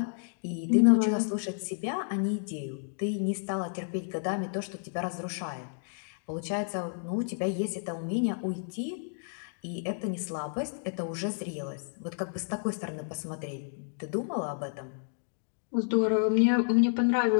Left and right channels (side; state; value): right; silent; digital silence